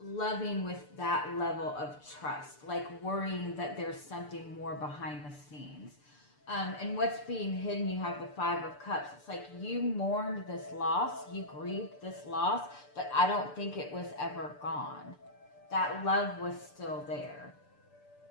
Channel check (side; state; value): right; late; 6.8 ms